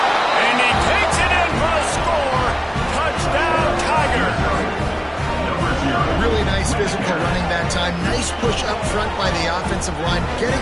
And he takes it in for a score. Touchdown, Tigers. Really nice physical running that time. Nice push up front by the offensive line. Getting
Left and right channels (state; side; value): identical; both; correlation 1.00